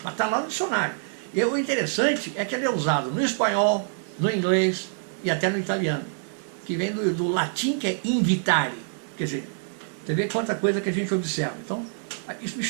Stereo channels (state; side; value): silent; left; 61 dB below the other